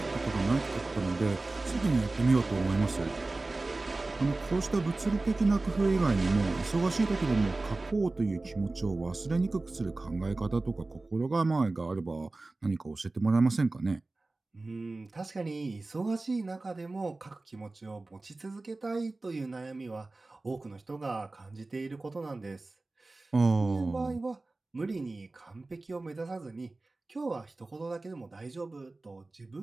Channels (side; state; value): left; quieter; 3.2 dB